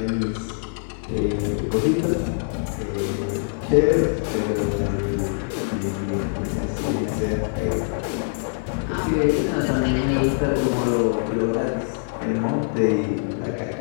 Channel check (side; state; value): right; silent; 57 dB below the other